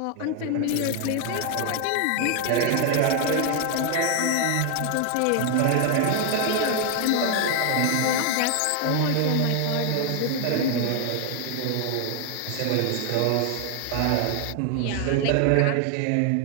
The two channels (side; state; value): both; different; correlation 0.00